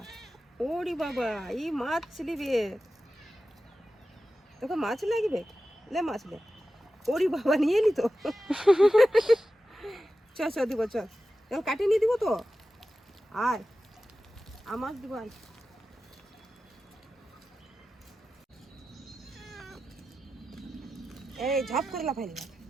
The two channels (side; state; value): both; normal; correlation 0.93